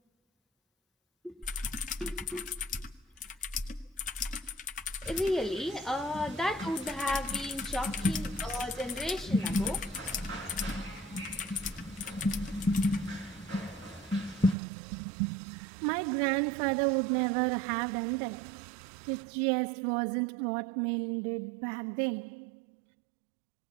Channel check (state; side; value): drops out; left; at 14.6 s